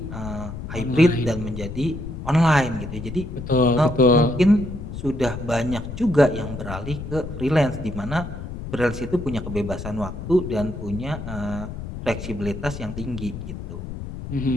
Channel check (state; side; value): noise; left; rumble, 8 dB below the sound